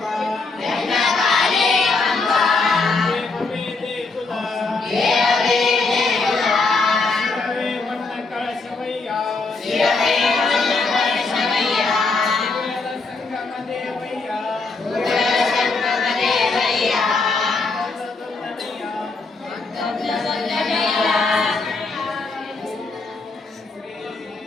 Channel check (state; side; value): quieter; right; 3.9 dB